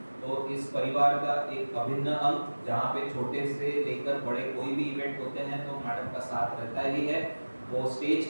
तो इस परिवार का एक अभिन्न अंग, जहाँ पे छोटे से लेकर बड़े कोई भी इवेंट होते हैं तो मैडम का साथ रहता ही है। वो स्टेज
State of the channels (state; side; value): inverted; both; correlation -1.00